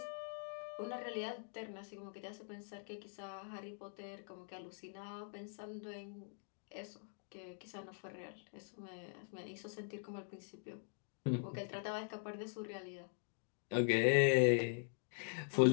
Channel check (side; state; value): right; silent; digital silence